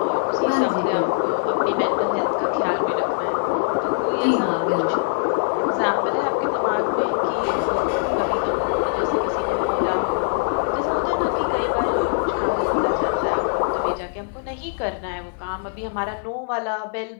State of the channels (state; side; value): silent; right; digital silence